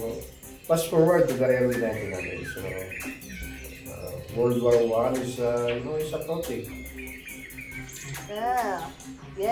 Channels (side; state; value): both; identical; correlation 1.00